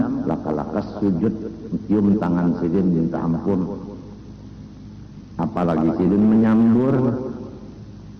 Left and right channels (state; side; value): identical; both; correlation 1.00